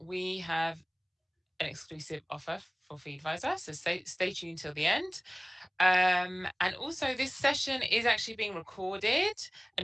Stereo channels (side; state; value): both; identical; correlation 1.00